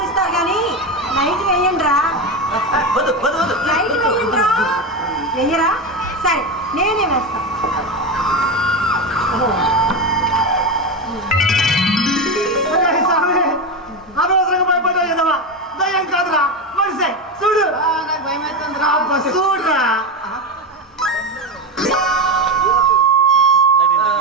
కానీ లైట్ వేయండి రా. లైట్ వేయండి రా. వెయ్యరా? సరే నేనే వేస్తాను. అనవసరంగా భయపడ్డా కదవా? దయ్యం కాదురా మనిషే. చూడు నాకు భయం అవుతుంది. చూడరా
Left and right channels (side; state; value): both; normal; correlation 0.15